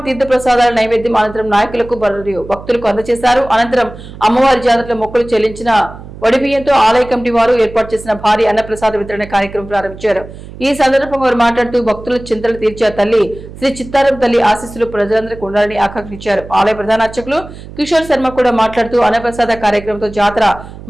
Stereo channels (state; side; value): noise; right; hum, 15 dB below the sound